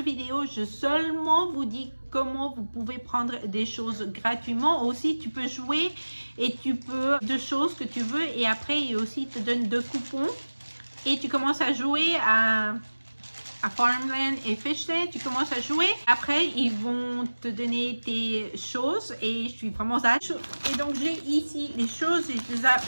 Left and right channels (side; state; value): both; inverted; correlation -1.00